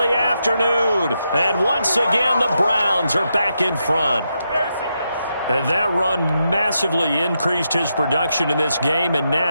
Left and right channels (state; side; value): inverted; both; correlation -0.84